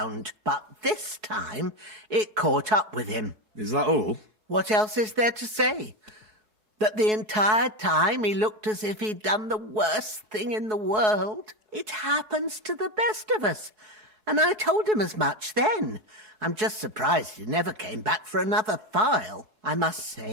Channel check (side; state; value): left; late; 4.7 ms